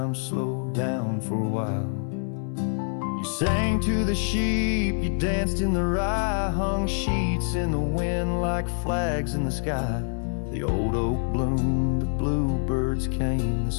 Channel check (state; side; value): silent; right; 59 dB below the other